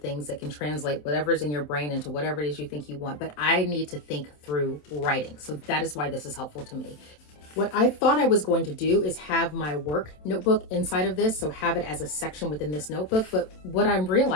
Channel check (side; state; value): right; late; 27 ms